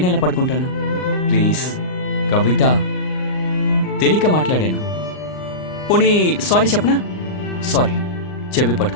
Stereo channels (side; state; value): right; late; 39 ms